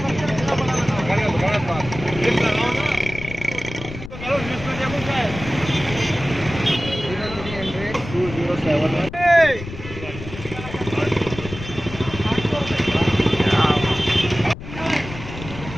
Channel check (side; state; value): left; noise; rumble, 11 dB below the sound